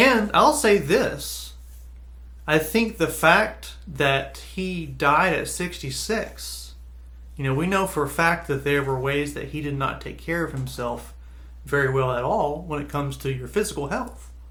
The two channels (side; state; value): both; identical; correlation 1.00